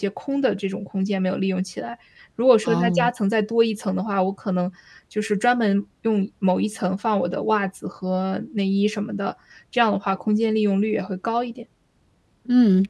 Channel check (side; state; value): both; identical; correlation 1.00